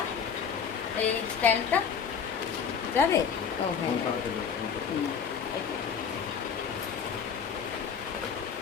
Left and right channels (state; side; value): quieter; right; 6.8 dB